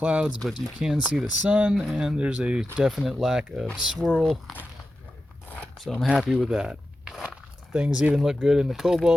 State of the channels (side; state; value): both; normal; correlation 0.92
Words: but you can see the sun and there's a definite lack of swirl, so I'm happy with that. Things even look good in the